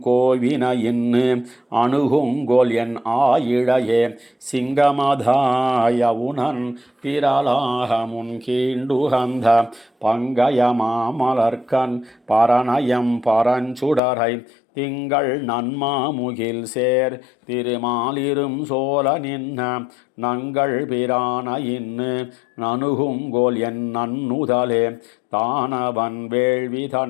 கோவினையின்னு அணுகுங்கோல் என் ஆயிழையே சிங்கமதாயவுனன் திரளாக முன் கீண்டுகந்த பங்கய மாமலர்கண் பரணயம் பரஞ்சுடரை திங்கள் நன்மாமுகில் சேர் திருமாலிரும் சோலை நின்ன நங்கள் பிரான இன்னு நணுகுங்கோல் என் நன்னுதலே தானவன் வேள்வி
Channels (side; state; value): right; drops out; at 14.0 s